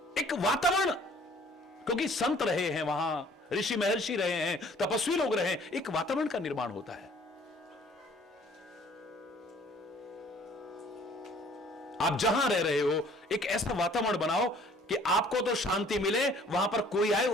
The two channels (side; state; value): both; normal; correlation 0.55